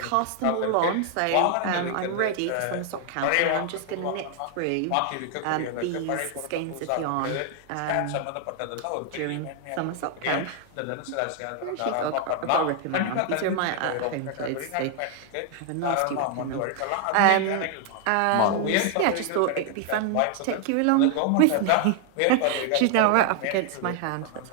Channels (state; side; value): different; both; correlation 0.00